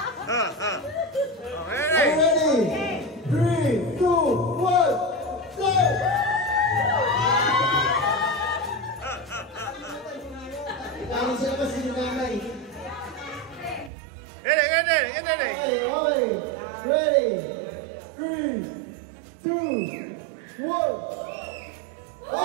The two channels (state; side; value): drops out; left; at 13.9 s